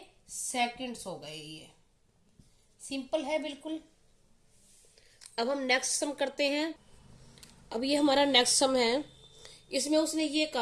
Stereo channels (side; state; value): both; identical; correlation 1.00